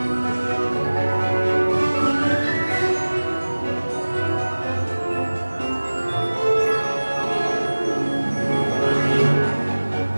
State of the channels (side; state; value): both; inverted; correlation -1.00